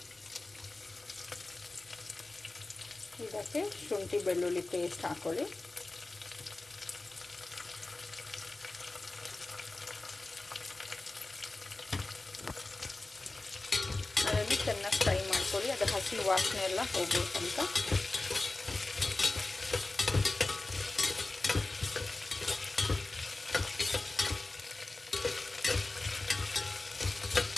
ಇದಕ್ಕೆ ಶುಂಠಿ ಬೆಳ್ಳುಳ್ಳಿ ಪೇಸ್ಟ್ ಹಾಕ್ಕೊಳ್ಳಿ. ಅದನ್ನು ಚೆನ್ನಾಗಿ ಫ್ರೈ ಮಾಡ್ಕೊಳ್ಳಿ. ಅದು ಹಸಿ ವಾಸನೆ ಎಲ್ಲ ಹೋಗ್ಬೇಕಂತ.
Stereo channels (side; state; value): right; quieter; 3.1 dB